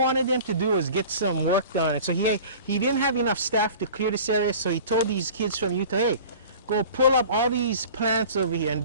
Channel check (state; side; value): inverted; both; correlation -0.41